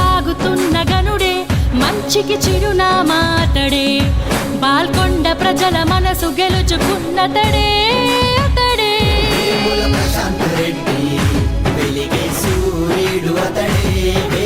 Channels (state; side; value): identical; both; correlation 1.00